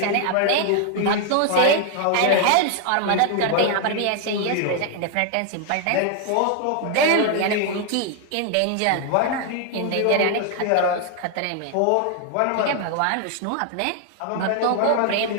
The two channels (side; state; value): both; different; correlation 0.00